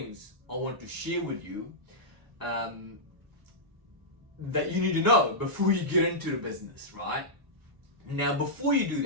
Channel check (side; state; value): left; late; 1.0 ms